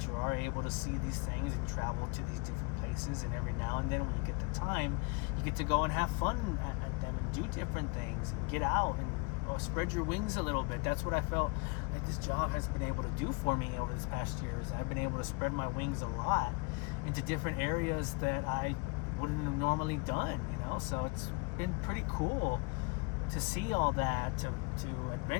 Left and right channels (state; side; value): quieter; right; 29.4 dB